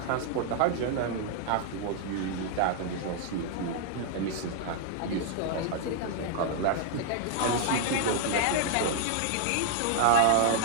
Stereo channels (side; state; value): both; different; correlation 0.00